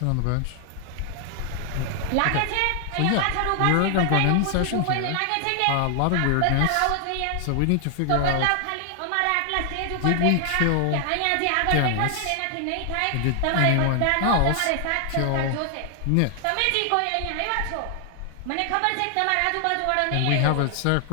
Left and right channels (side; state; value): both; different; correlation 0.00